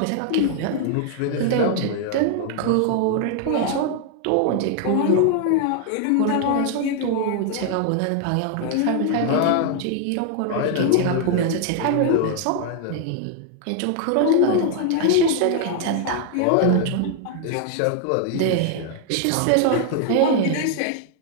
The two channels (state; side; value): different; both; correlation 0.00